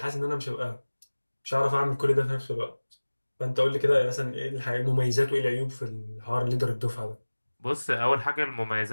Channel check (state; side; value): inverted; both; correlation -1.00